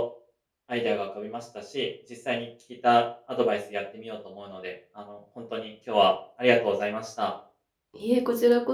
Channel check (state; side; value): identical; both; correlation 1.00